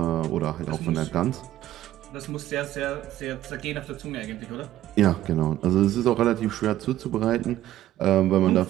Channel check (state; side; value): quieter; left; 13.6 dB